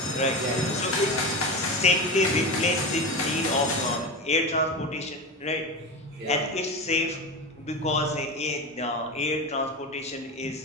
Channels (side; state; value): both; normal; correlation 0.22